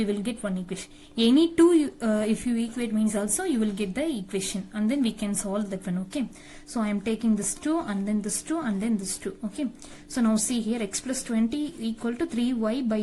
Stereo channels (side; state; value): both; identical; correlation 1.00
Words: will get one equation. Any 2 if you equate means also you will get the equation and then we can solve that one. Okay, so I am taking this 2 and then this 2 and then this 2. Okay, so now see here x plus 20 equal to 3y by